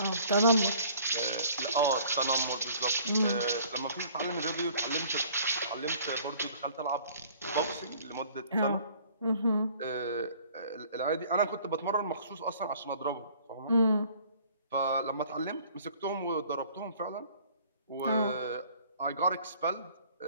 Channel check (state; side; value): inverted; both; correlation -0.54